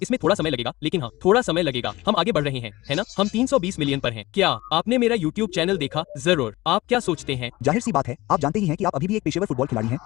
इसमें थोड़ा समय लगेगा, लेकिन हाँ, थोड़ा समय लगेगा। हम आगे बढ़ रहे हैं, है ना? हम 320 मिलियन पर हैं। क्या आपने मेरा YouTube चैनल देखा? जरूर। आप क्या सोचते हैं? जाहिर सी बात है, आप जानते ही हैं कि आप अभी भी एक पेशेवर फुटबॉल खिलाड़ी हैं।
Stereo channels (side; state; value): right; quieter; 19.3 dB